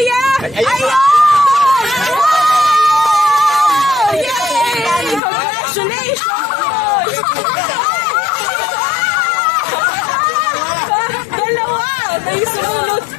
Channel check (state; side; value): drops out; right; at 5.2 s